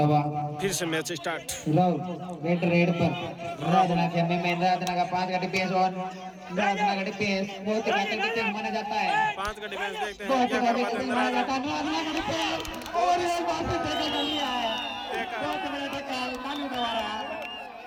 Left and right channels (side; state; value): both; identical; correlation 1.00